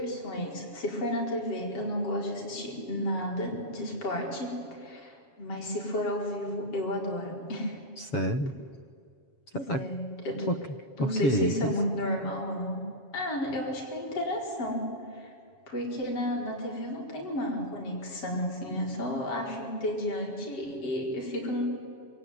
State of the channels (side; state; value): right; late; 7.3 ms